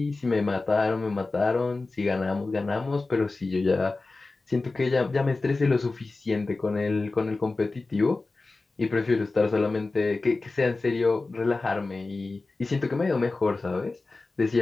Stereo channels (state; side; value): quieter; right; 3.5 dB